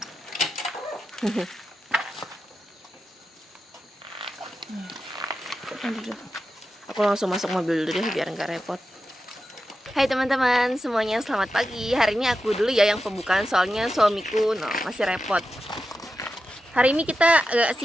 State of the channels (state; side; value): normal; both; correlation 0.90